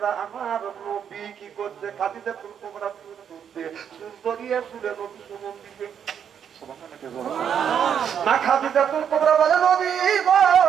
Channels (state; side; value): quieter; left; 8.2 dB